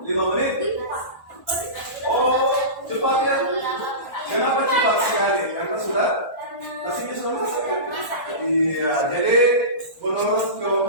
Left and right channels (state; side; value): late; right; 1.4 ms